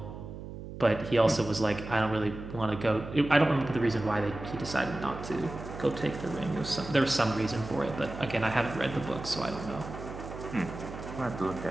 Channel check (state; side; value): noise; right; hum, 10 dB below the sound